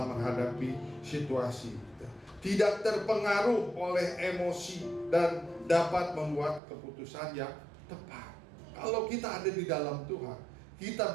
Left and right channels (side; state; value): left; drops out; at 6.6 s